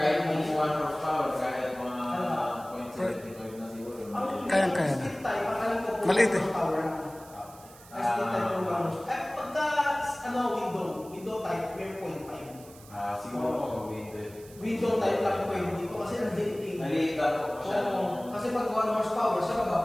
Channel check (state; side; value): noise; right; hiss, 21 dB below the sound